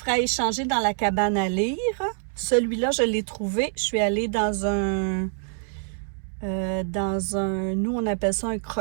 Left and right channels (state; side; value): silent; left; 61 dB below the other